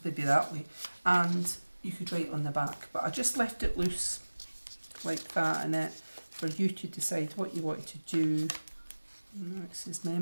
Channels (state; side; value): inverted; both; correlation -1.00